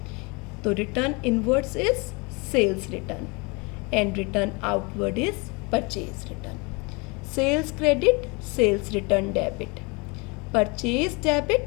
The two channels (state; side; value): quieter; right; 28.9 dB